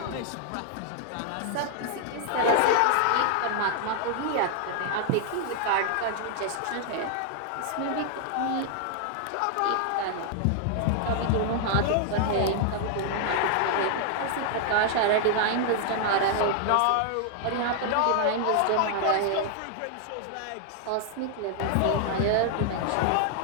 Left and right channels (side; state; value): both; different; correlation 0.00